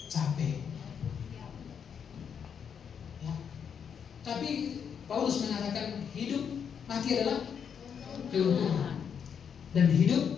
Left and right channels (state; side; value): quieter; right; 7.4 dB